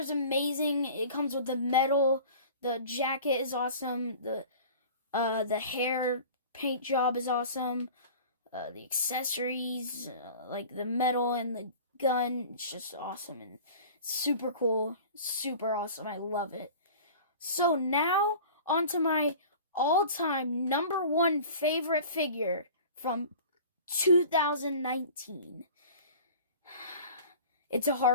amazing. It comes with the medal. The jacket is awesome. The hair paint job is awesome. The accessories, like the medal and the gun, it's just awesome and super cool. Super awesome. I love it. So now, on to my all-time number one favorite figure from 2019. It's a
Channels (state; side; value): inverted; both; correlation -0.41